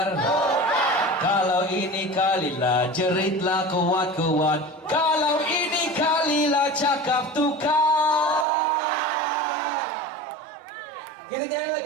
Kalau ini kalilah jeritlah kuat-kuat. Kalau ini kalilah cakap tukar. Kita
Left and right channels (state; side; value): drops out; left; at 8.5 s